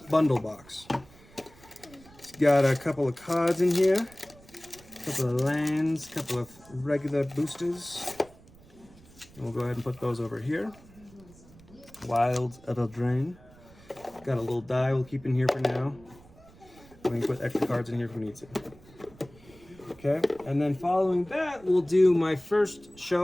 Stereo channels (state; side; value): noise; right; rumble, 24 dB below the sound